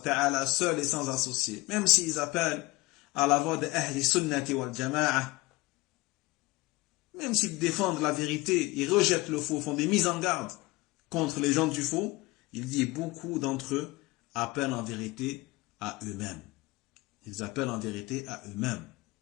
seul et sans associé, même s'ils appellent à la voix de Ahli Sunnati wal Jama'a, même s'ils défendent la vérité, ils rejettent le faux, font des mises en garde contre les gens du faux, il dit beaucoup d'entre eux appellent en vérité à eux-mêmes. Ils appellent en vérité à eux-mêmes.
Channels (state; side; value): quieter; right; 22.1 dB